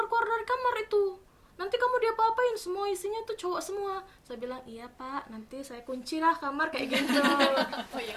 dari kamar itu, nanti kamu diapa-apain, semua isinya tuh cowok semua. Saya bilang iya Pak, nanti saya kunci lah kamar kayak gitu. Oh iya,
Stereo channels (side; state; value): both; identical; correlation 1.00